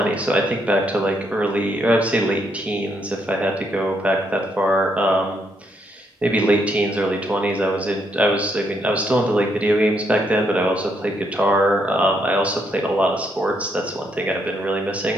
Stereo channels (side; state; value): both; normal; correlation 0.75